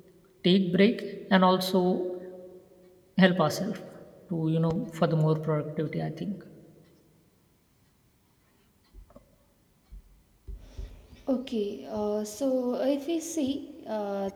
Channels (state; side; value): identical; both; correlation 1.00